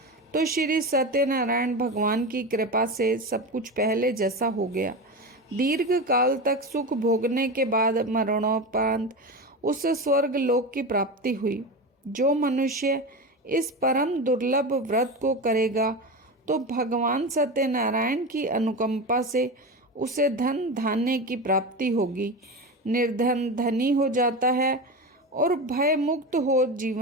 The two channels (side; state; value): both; normal; correlation 0.23